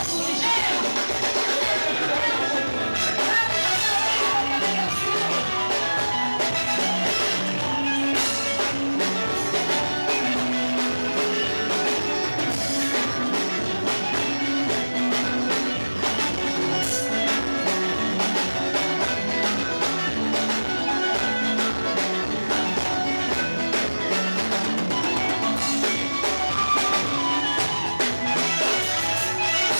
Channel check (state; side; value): inverted; both; correlation -1.00